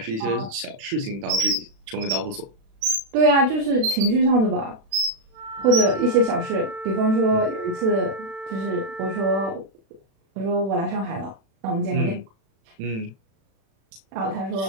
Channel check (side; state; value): left; late; 36 ms